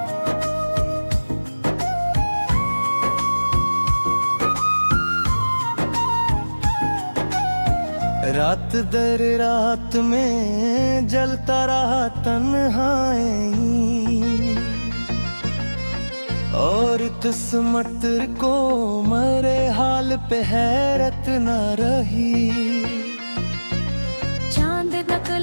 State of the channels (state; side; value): inverted; both; correlation -1.00